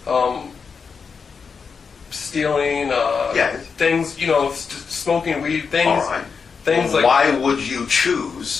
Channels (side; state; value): right; quieter; 5.6 dB